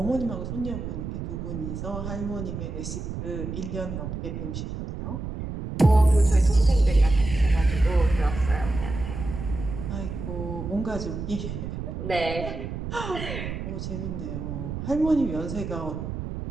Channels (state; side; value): noise; right; rumble, 6 dB below the sound